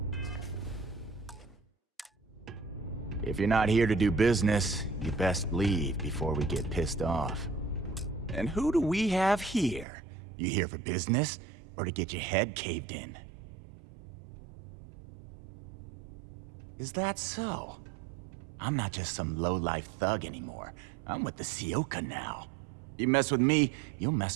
If you're not here to do business, you best leave before we get pissed off. And who do we have here? You here for business, or to get your head caved in? Is that so? I'm not just some low-life thug anymore. I'm with the Sioka now. You mess with me, you'll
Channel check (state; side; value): drops out; left; at 9.9 s